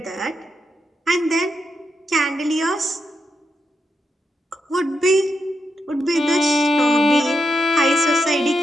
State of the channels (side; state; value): both; normal; correlation 0.84